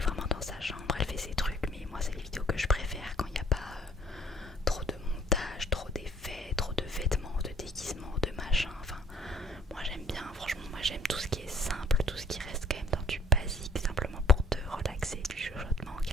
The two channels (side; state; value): both; normal; correlation 0.58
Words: dans sa chambre, elle fait ses trucs. Mais moi c'est les vidéos que je préfère quand il n'y a pas trop de montage, trop d'effets, trop de vêtements, de déguisements, de machin. Enfin moi j'aime bien, franchement moi j'aime tout ce qui est simple, tout ce qui reste quand même dans du basique, simplement pour te relaxer, du chuchotement,